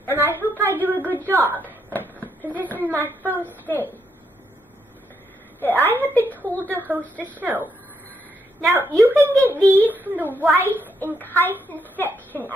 And I hope I do a good job, because this is my first day that I have been told to host a show. Now, you can get these from the rice and chitin section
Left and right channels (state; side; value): normal; both; correlation 0.77